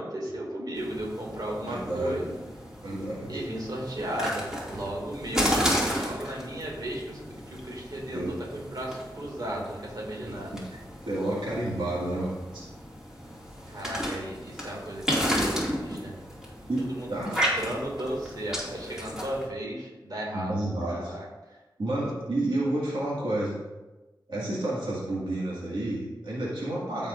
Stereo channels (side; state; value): both; normal; correlation 0.73